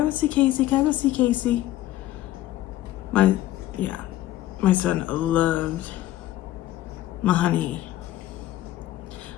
go see Casey? Can I go see Casey? My son loved my honey.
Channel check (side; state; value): right; quieter; 14.4 dB